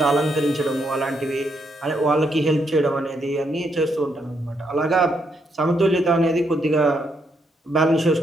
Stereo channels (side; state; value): both; normal; correlation 0.77